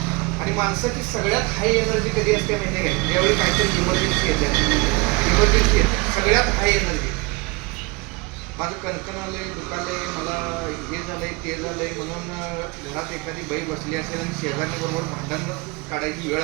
आणि माणसाची सगळ्यात हाय एनर्जी कधी असते माहिती आहे, ज्यावेळी काहीतरी इमर्जन्सी येते. इमर्जन्सी येते सगळ्यात हाय एनर्जी. माझं कणकण आलंय, दुखालंय, मला हे झालंय ते झालंय म्हणून घरात एखादी बाई बसली असेल आणि शेजाऱ्यांबरोबर भांडण काढायची वेळ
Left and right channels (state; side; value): quieter; left; 25.6 dB